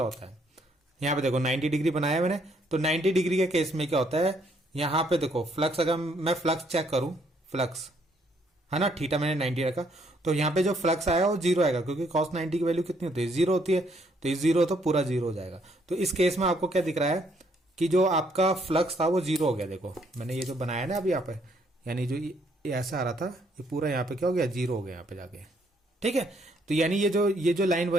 होता है, यहाँ पे देखो 90 डिग्री बनाया मैंने, तो 90 डिग्री के केस में क्या होता है, यहाँ पे देखो फ्लक्स, अगर मैं फ्लक्स चेक करूं, फ्लक्स है ना, थीटा मैंने 90 रखा, तो यहाँ पे जो फ्लक्स आया वो जीरो आएगा, क्योंकि cos 90 की वैल्यू कितनी होती है, जीरो होती है, तो ये जीरो तो पूरा जीरो हो जाएगा। तो इस केस में आपको क्या दिख रहा है कि जो आपका फ्लक्स था वो जीरो हो गया। देखो मैंने ये जो बनाया ना अभी यहाँ पे, यानी जो ये ऐसा आ रहा था, ये पूरा यहाँ पे क्या हो गया, जीरो हो गया यहाँ पे जाके। ठीक है, तो यानी ये जो लाइन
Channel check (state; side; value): normal; both; correlation 0.69